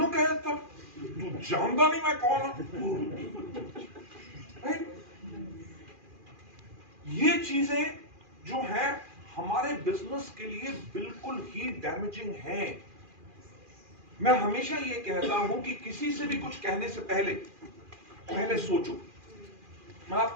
कहता, तू जानता नहीं मैं कौन हूं। ये चीजें जो है हमारे बिजनेस के लिए बिल्कुल ही डैमेजिंग हैं। मैं हमेशा ये कहता हूं कि किसी से भी कुछ कहने से पहले सोचो। मैं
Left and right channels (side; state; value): left; late; 2.4 ms